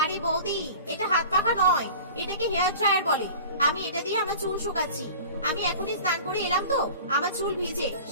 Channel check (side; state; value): both; inverted; correlation -0.40